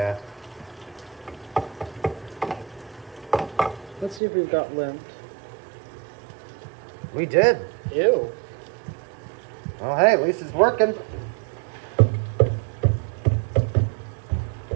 Let's see if we've got lint. We did. Ew. Well, hey, at least it's working. I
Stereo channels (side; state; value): left; drops out; at 4.2 s